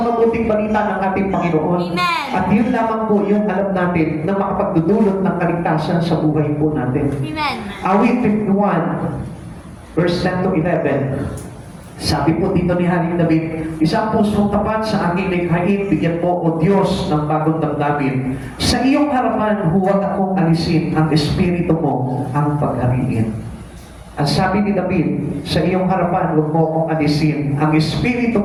mabuting balita ng ating Panginoon. Amen. At yun lamang po yung alam natin na makapagdudulot ng kaligtasan sa buhay po natin. Amen. Awit 51, verse 10 to 11. Sabi po dito ni Haring David, isang pusong tapat sa aking likhain, bigyan mo o Diyos ng bagong damdamin. Sa iyong harapan, huwag akong alisin ang espiritu mo ang paghariin. Ang sabi ni David, sa iyong harapan, huwag mo akong alisin ang espiritu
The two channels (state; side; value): identical; both; correlation 1.00